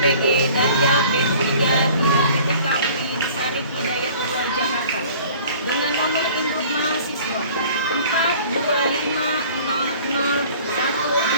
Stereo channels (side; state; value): both; inverted; correlation -0.48